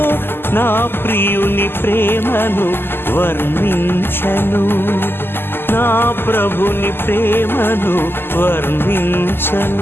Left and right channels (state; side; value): late; right; 0.11 ms